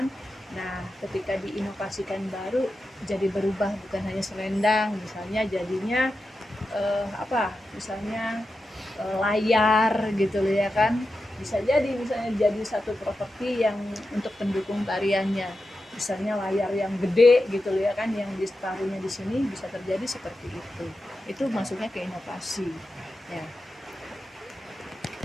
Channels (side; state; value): both; normal; correlation 0.90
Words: Nah, ketika diinovasikan baru jadi berubah, bukan hanya selendang, misalnya jadinya misalnya layar gitu loh ya kan. Bisa jadi misalnya jadi satu properti yang untuk pendukung tariannya, misalnya layar yang gede gitu loh ya kan, yang ditaruhnya di sini, bisa terjadi seperti itu. Itu maksudnya ke inovasi ya.